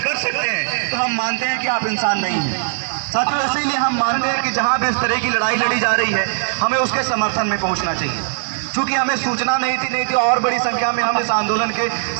कर सकते हैं तो हम मानते हैं कि आप इंसान नहीं हैं। साथियों, इसीलिए हम मानते हैं कि जहां भी इस तरह की लड़ाई लड़ी जा रही है हमें उसके समर्थन में पहुंचना चाहिए। चूंकि हमें सूचना नहीं थी और बड़ी संख्या में हम इस आंदोलन के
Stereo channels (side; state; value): left; silent; digital silence